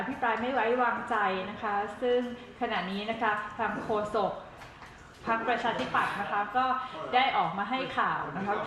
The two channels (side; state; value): both; identical; correlation 1.00